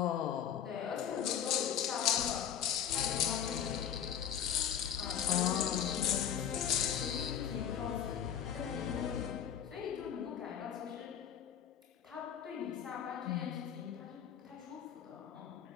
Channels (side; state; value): right; quieter; 9.1 dB